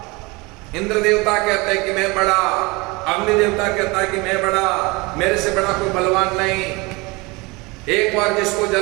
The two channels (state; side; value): quieter; left; 25.1 dB